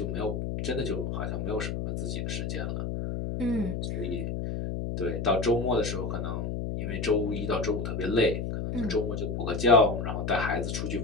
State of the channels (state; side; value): noise; left; hum, 2 dB below the sound